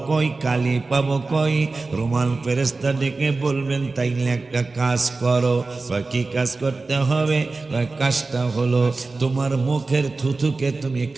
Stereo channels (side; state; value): left; quieter; 3.7 dB